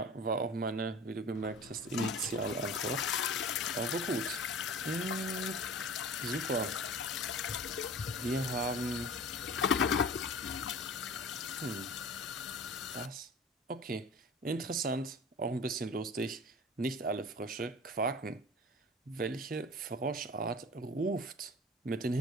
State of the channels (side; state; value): both; normal; correlation 0.39